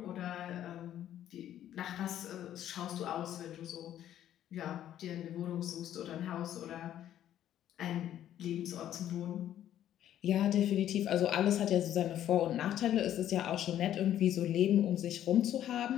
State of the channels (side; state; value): right; quieter; 11.4 dB